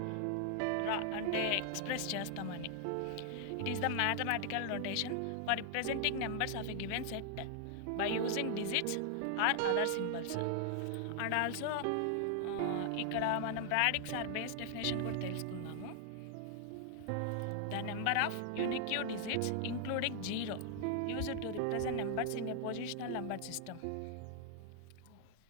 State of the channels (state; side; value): different; both; correlation 0.00